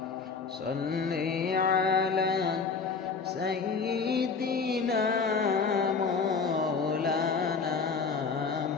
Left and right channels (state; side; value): quieter; right; 5.1 dB